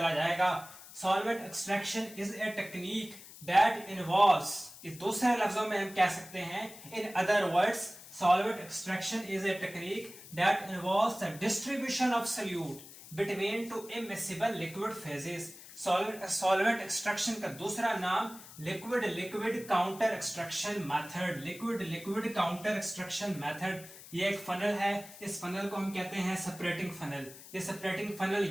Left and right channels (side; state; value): left; noise; hiss, 17 dB below the sound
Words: जाएगा। Solvent extraction is a technique that involves, इस दूसरे लफ्जों में हम कह सकते हैं, in other words solvent extraction is a technique that involves the distribution of solute between two immiscible liquid phases। Solvent extraction का दूसरा नाम लिक्विड काउंटर एक्सट्रैक्शन मेथड। ये एक फनल है, इस फनल को हम कहते हैं सेपरेटिंग फनल। ये सेपरेटिंग फनल